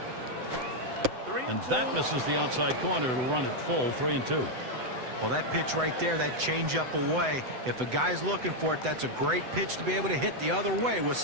And that misses the outside corner. It'll run it full. 3-2. Well, that pitch right there, that changeup away, if a guy's looking for it, that's a great pitch to be able to hit the other way with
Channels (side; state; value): left; late; 7.9 ms